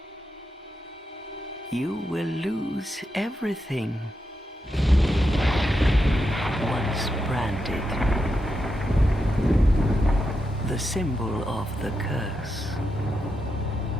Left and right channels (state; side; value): normal; both; correlation 0.86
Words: You will lose everything once branded, the symbol of the curse,